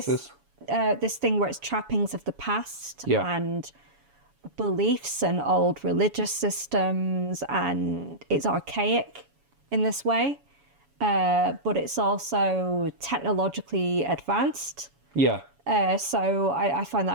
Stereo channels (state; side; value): late; left; 7.1 ms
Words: this thing where it's trappings of the past and beliefs and old religious systems, and it's archaic in this way, but it's also technologically advanced. Yeah. So I find